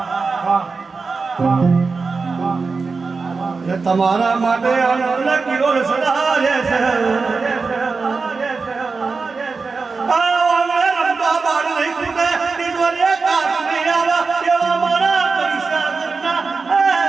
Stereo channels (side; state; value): left; quieter; 4.4 dB